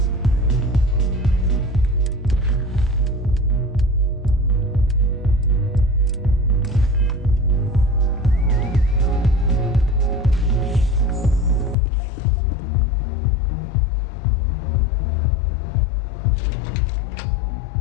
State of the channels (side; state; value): right; drops out; at 11.8 s